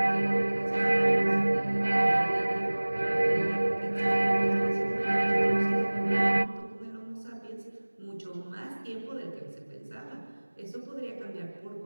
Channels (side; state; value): both; inverted; correlation -1.00